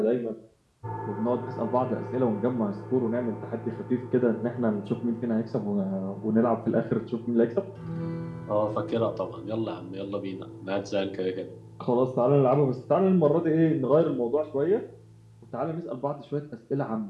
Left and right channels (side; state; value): both; identical; correlation 1.00